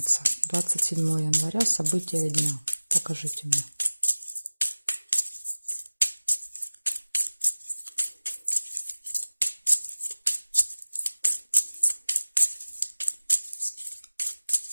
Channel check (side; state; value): both; inverted; correlation -1.00